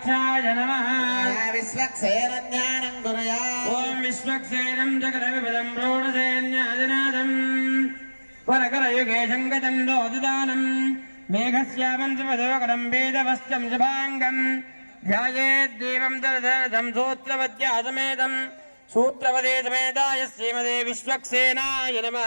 नमः विश्वक्सेन ज्ञानं कुर्यात् ॐ विश्वक्सेनं जगदविपदं प्रोढसेन्यादिनादम् वरकरयुगे शङ्खदण्डोदिदानम् मेघस्यामं सुमधोकरं वेदवस्त्रं शुभाङ्गम् ध्यायेद्देवं दरदरदं सूत्रवद्यासमेतं सूत्रवदे समेताय श्रीमते विश्वक्सेनाय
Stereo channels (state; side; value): inverted; both; correlation -1.00